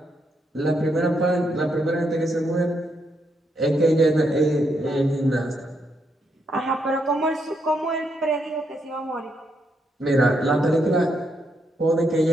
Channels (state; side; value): normal; both; correlation 0.78